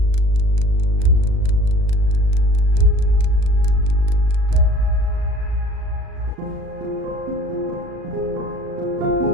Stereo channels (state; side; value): late; left; 37 ms